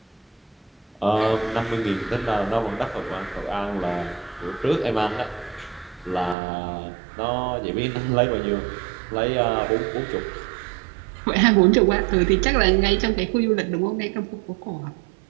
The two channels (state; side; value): drops out; left; at 6.4 s